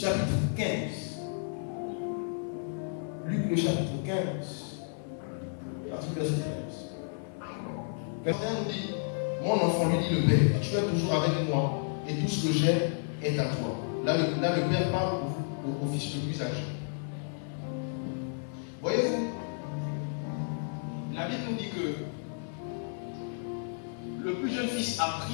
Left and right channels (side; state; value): right; silent; 57 dB below the other